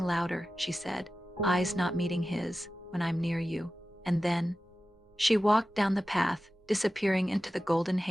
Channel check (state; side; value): normal; both; correlation 0.94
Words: louder," she said, eyes not meeting his, "when I'm near you." And then she walked down the path, disappearing into the golden